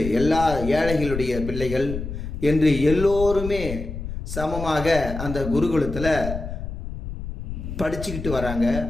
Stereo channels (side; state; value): left; noise; rumble, 7 dB below the sound